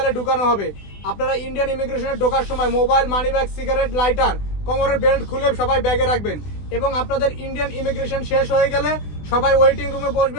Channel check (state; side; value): late; right; 20 ms